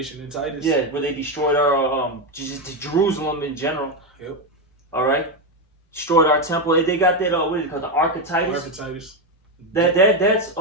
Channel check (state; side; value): normal; both; correlation 0.08